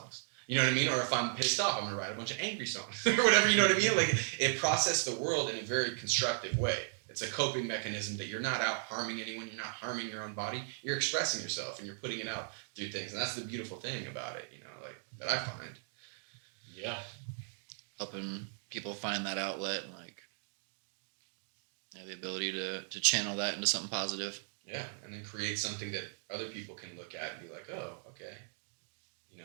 You know what I mean? Or if I'm pissed off, I'm gonna write a bunch of angry songs or whatever. You know what I mean? Like it processed the world in a very constructive way. It's a coping mechanism that you're not out harming anyone. You're not harming your own body. You're expressing yourself and you're putting it out through things. And that's the beautiful thing about it, like that I find. Yeah. Helping people find that outlet and like the ability to channel that into something positive. Yeah. And then create something that other people can look at and be like, oh, okay.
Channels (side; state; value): left; silent; digital silence